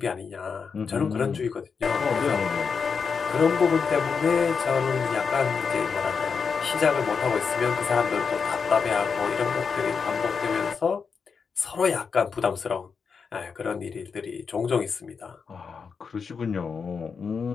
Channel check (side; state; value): right; quieter; 5.7 dB